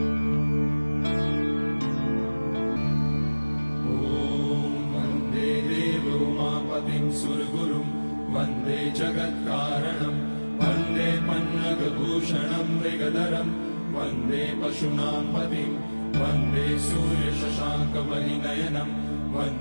उमापतिं सुरगुरुं वन्दे जगत्कारणं वन्दे पन्नगभूषणं मृगधरं वन्दे पशूनां पतिं वन्दे सूर्यशशाङ्कवलिनयनं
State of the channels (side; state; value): both; inverted; correlation -1.00